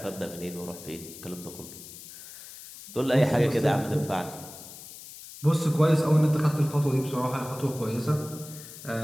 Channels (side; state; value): left; noise; hiss, 15 dB below the sound